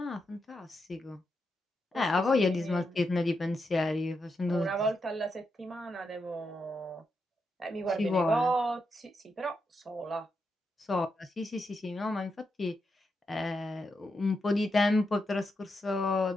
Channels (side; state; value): both; normal; correlation 0.84